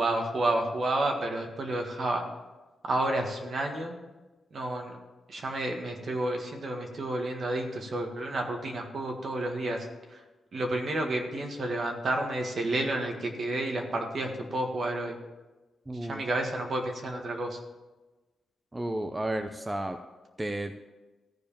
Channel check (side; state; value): both; normal; correlation 0.85